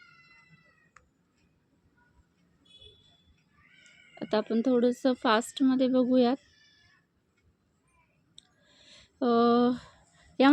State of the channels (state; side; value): identical; both; correlation 1.00